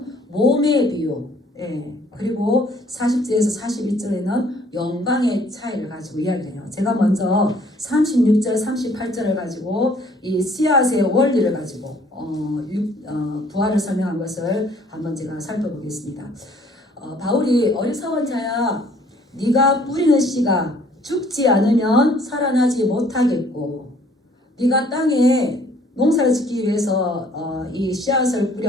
몸의 비유, 그리고 40절에서 42절에는 영광의 차이를 가지고 이야기해요. 제가 먼저 36절, 38절을 가지고 이 씨앗의 원리를 가지고 부활을 설명한 것을 한번 제가 살펴보겠습니다. 바울이 어리석은 자야, 네가 뿌리는 씨가 죽지 않으면 살아나지 못하겠고, 네가 땅에 농사를 짓기 위해서 이 씨앗을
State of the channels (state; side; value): normal; both; correlation 0.59